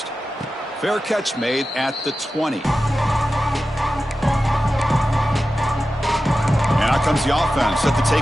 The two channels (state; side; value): normal; both; correlation 0.93